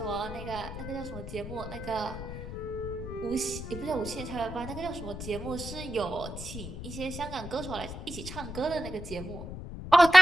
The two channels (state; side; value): noise; left; rumble, 9 dB below the sound